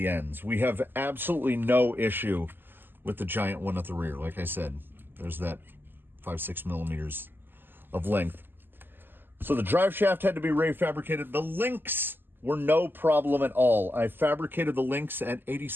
ends. We have absolutely no issue with the giant one at the rear. Like I said, there's that 5-6 millimeters of length. So the drive shaft had to be refabricated. The links were no problem at all. I fabricated the links at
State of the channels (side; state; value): left; late; 0.095 ms